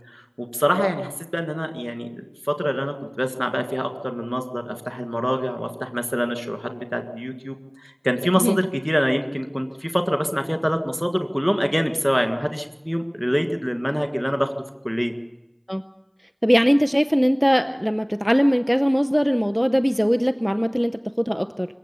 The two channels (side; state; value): both; identical; correlation 1.00